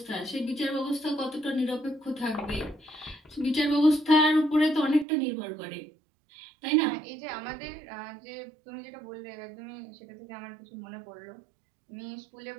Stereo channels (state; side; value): drops out; left; at 5.1 s